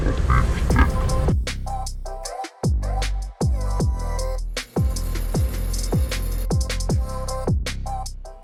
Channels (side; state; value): both; identical; correlation 1.00